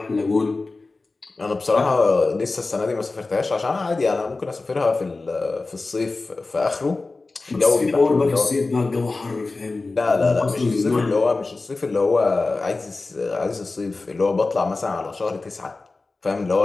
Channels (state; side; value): quieter; right; 3.6 dB